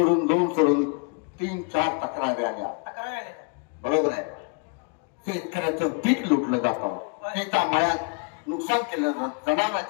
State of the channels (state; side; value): quieter; right; 35.3 dB